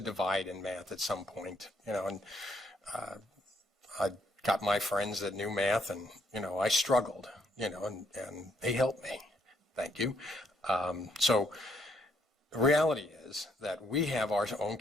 divide in math at some point, and I got my friends that knew math, and, I struggled, and they helped me. Thank you. So the reality is that we have our own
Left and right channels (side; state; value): both; normal; correlation 0.71